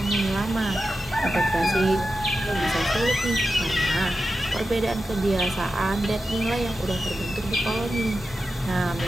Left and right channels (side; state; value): both; normal; correlation 0.91